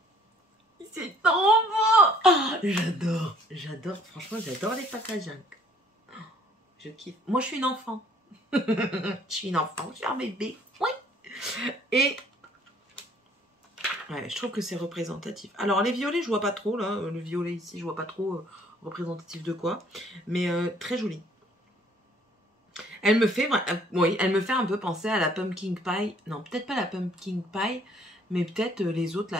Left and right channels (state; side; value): normal; both; correlation 0.60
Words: c'est trop beau. Oh, j'adore. Franchement, j'adore les packaging. Je kiffe. Moi, je suis une enfant. Je suis un bébé. Oui. Et ouais, je trouve que c'est représentatif. Alors, les violets, je vois pas trop, là. Le violet ici, je vois pas trop représentatif de quoi. Mais très joli. Elle me fait, oui, elle me fait un peu penser à la Pumpkin Pie. Non, peut-être pas la Pumpkin Pie, mais peut-être les autres,